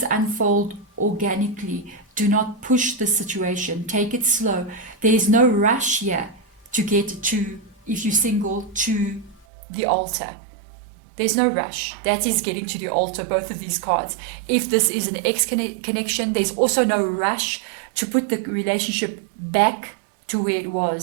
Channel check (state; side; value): drops out; left; at 9.5 s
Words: unfold organically. Do not push the situation. Take it slow. There is no rush here to get to, if you're single, to the altar. There's no rush. That is getting to the altar, both of these cards. If this is an ex-connection, there's also no rush to put the relationship back to where it